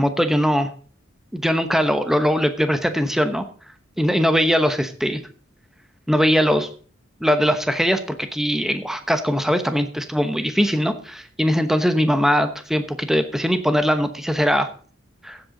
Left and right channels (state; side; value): normal; both; correlation 0.90